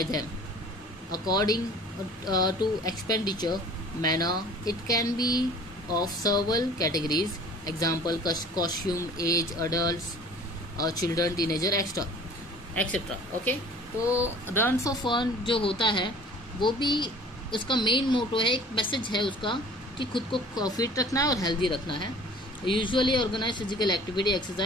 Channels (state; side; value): normal; both; correlation 0.48